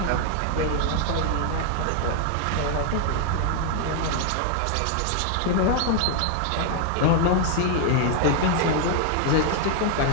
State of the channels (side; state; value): both; different; correlation 0.00